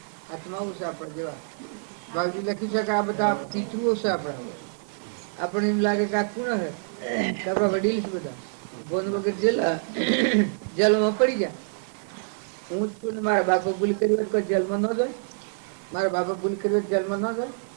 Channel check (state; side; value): silent; left; 57 dB below the other